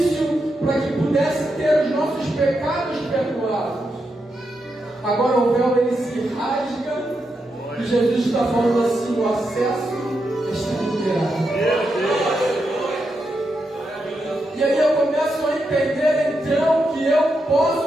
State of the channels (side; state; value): both; normal; correlation 0.85